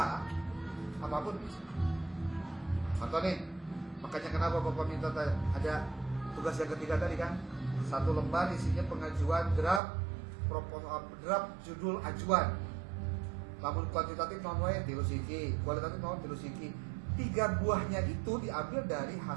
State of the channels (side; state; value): left; drops out; at 9.8 s